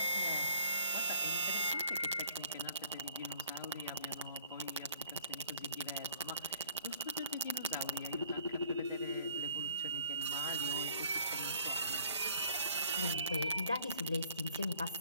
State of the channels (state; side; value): inverted; both; correlation -0.59